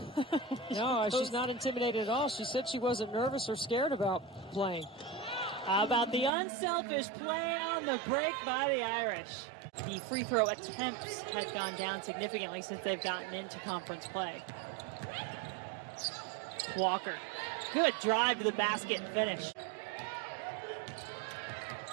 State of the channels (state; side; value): drops out; left; at 6.3 s